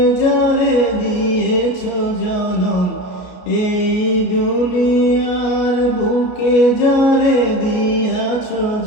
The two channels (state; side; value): late; right; 33 ms